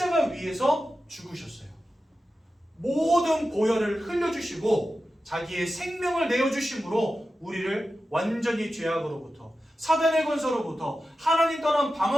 위에서 죽으셨어요. 모든 보혈을 흘려주시고 자기의 생명을 내어주심으로 우리를 완전히 죄악으로부터 사단의 권세로부터 하나님 떠난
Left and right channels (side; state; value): both; normal; correlation 0.92